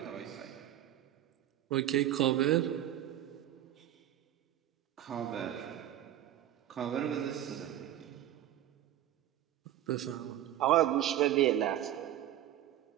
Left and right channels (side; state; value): left; quieter; 12.5 dB